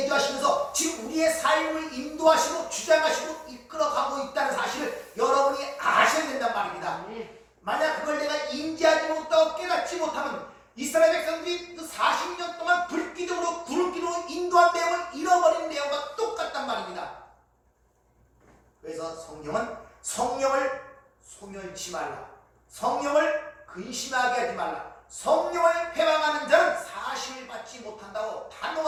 지금 우리의 삶을 인도하시고 주장하시고 이끌어가고 있다는 사실을 여러분이 아셔야 된단 말입니다. 잃지 말라. 성령을 근심하게 하지 말라. 성령을 회방하는 자는 사심을 받지 못한다고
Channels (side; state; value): both; identical; correlation 1.00